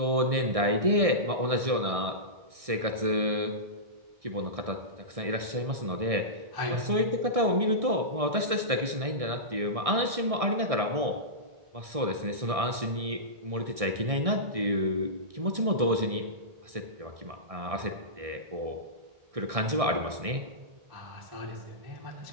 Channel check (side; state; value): left; late; 1.6 ms